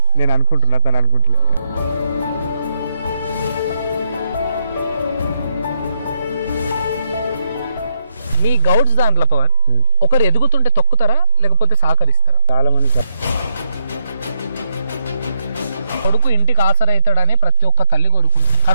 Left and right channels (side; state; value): both; inverted; correlation -0.78